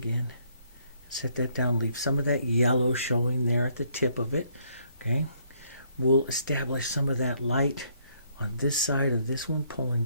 Set that down. Leave some of that yellow showing there at the tip of it. Okay. We'll establish some of that light on this side of this one, pulling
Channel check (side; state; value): both; inverted; correlation -0.68